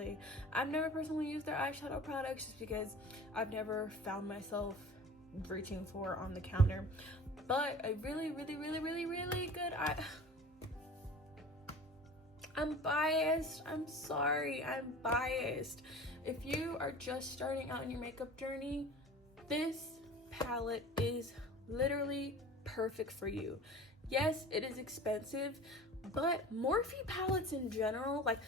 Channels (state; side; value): normal; both; correlation 0.40